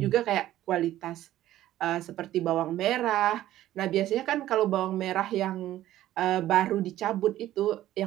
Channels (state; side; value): quieter; left; 13.9 dB